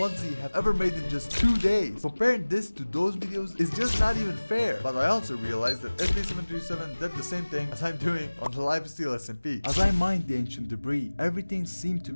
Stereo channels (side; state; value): both; inverted; correlation -1.00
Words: have ever made in just 2 days. Comparing this to those videos is just not even fair. But I also realized that SB737 did the same thing as I'm doing on the Lifesteal SMP. As I mined the ancient debris, everything seemed to